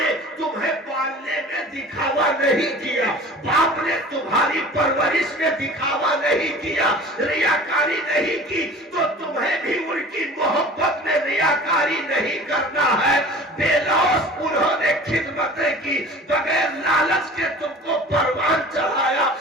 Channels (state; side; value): normal; both; correlation 0.42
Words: تمہیں پالنے میں دکھاوا نہیں کیا، باپ نے تمہاری پرورش میں دکھاوا نہیں کیا، ریاکاری نہیں کی، تو تمہیں بھی ان کی محبت میں ریاکاری نہیں کرنا ہے۔ بے لوث انہوں نے خدمتیں کی، بغیر لالچ کے تم کو پروان چڑھایا،